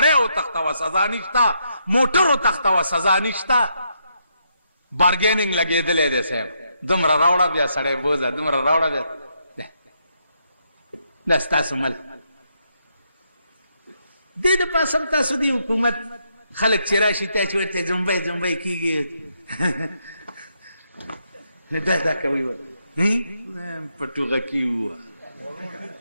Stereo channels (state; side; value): inverted; both; correlation -0.78